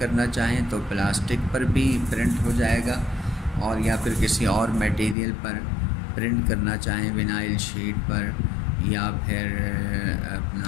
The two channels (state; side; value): drops out; right; at 5.2 s